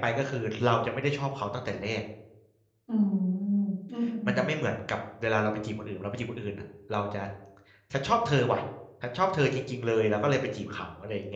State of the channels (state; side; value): identical; both; correlation 1.00